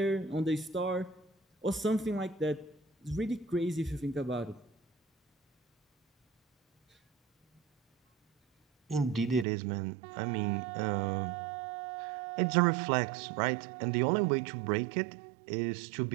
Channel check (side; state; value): left; drops out; at 9.5 s